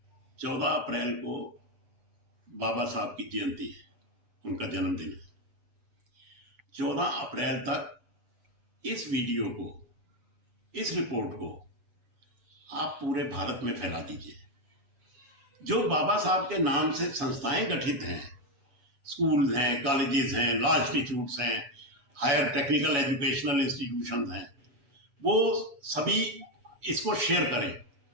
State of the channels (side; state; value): left; late; 8.0 ms